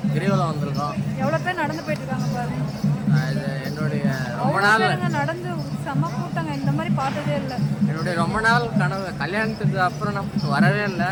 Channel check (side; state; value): both; identical; correlation 1.00